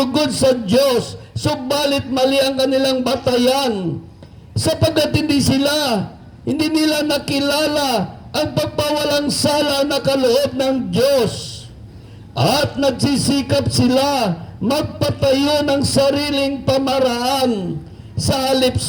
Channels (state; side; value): identical; both; correlation 1.00